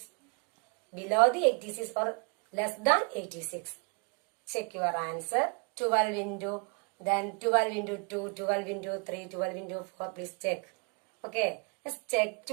below the 86 or less than 86. Check your answer. 12 into, then 12 into 2, 12 into 3, 12 into 4. Please check. Okay, let's check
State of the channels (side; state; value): left; quieter; 36.0 dB